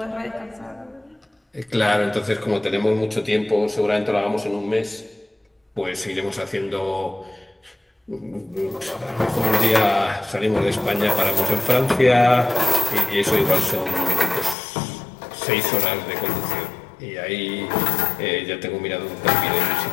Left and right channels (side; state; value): right; drops out; at 14.6 s